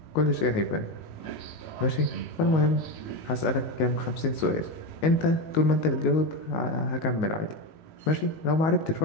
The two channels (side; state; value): right; late; 19 ms